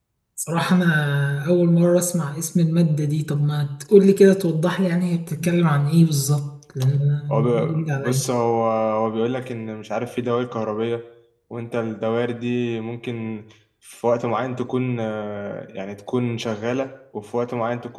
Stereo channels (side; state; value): both; identical; correlation 1.00